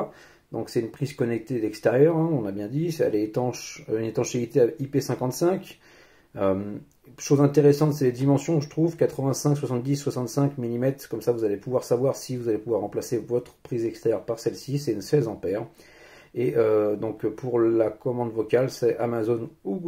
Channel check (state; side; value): identical; both; correlation 1.00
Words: Donc c'est une prise connectée d'extérieur, hein, on a bien dit, elle est étanche, une étanchéité à IP55. Chose intéressante, c'est les dimensions, je trouve, 85, 70, 65 mm, comme ça vous allez pouvoir savoir si vous allez pouvoir remplacer votre prise extérieure par celle-ci, c'est une 16 ampères. Et donc pour la commande vocale, c'est Amazon ou